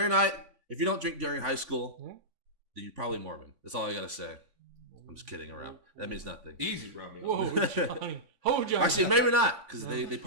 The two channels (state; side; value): late; left; 3.5 ms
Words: night. If you don't drink during high school, then you're probably Mormon. That's all I gotta say. I'm just kidding around. That means nothing. Easy, Romeo. Whoa, Johnny. Oh, Johnny. Actually, maybe not, because they